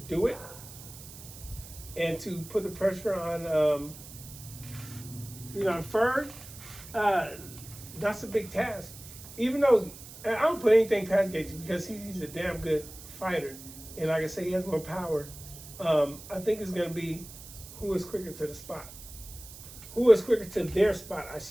do it and to put the pressure on Ferg? That's a big task. Even though I don't put anything past Gaethje because he's a damn good fighter, and like I say, he has more power. I think it's going to be who is quicker to the spot? Who is quicker to their spot, I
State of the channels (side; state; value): right; noise; hiss, 16 dB below the sound